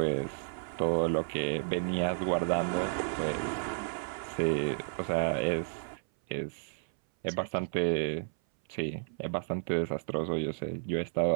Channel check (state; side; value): silent; left; 56 dB below the other